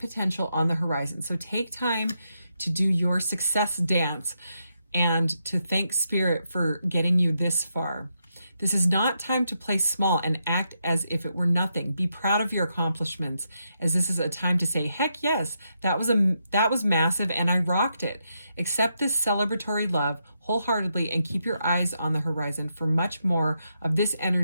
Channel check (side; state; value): both; inverted; correlation -0.82